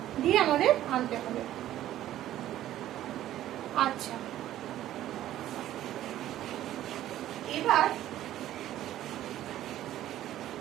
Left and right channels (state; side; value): quieter; left; 13.1 dB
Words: দিয়ে আমাদের আনতে হবে। আচ্ছা, এবার